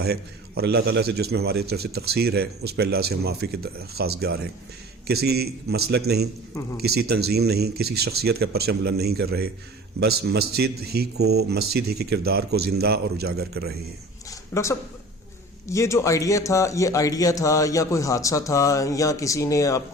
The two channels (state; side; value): normal; both; correlation 0.42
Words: ہے، اور اللہ تعالیٰ سے جس میں ہماری طرف سے تقصیر ہے اس پہ اللہ سے ہم معافی کے خواستگار ہیں۔ کسی مسلک نہیں، کسی تنظیم نہیں، کسی شخصیت کا پرچم بلند نہیں کر رہے، بس مسجد ہی کے کردار کو زندہ اور اجاگر کر رہے ہیں۔ ڈاکٹر صاحب یہ جو آئیڈیا تھا یا کوئی حادثہ تھا یا کسی نے آپ